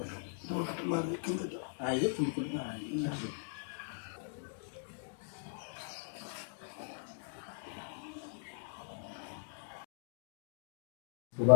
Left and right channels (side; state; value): right; silent; digital silence